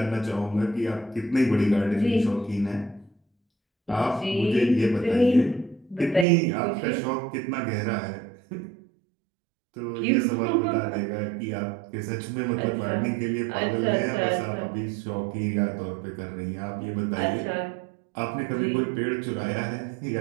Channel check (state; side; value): drops out; left; at 6.2 s